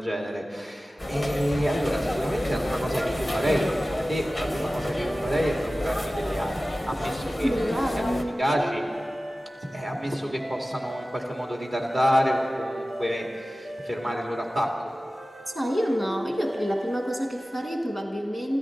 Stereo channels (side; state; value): both; normal; correlation 0.96